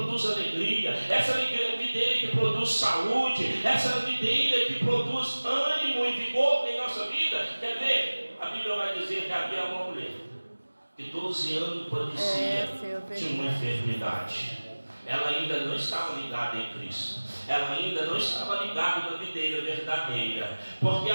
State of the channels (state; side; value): inverted; both; correlation -1.00